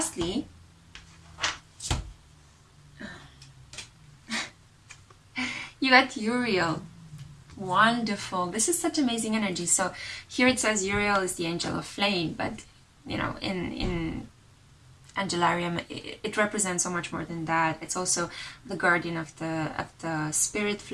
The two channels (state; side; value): identical; both; correlation 1.00